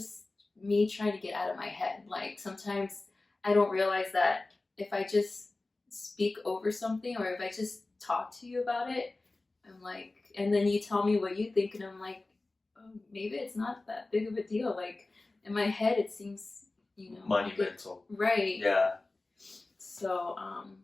me trying to get out of my head. Like, sometimes I don't realize that if I just speak over something, or if I just talk to you about it, I'm like, and then you tell me what you think, and I'm like, oh, maybe it's not that big of a deal. Like, in my head, it seems, monumental. Right. Yeah. So,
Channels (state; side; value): quieter; right; 3.2 dB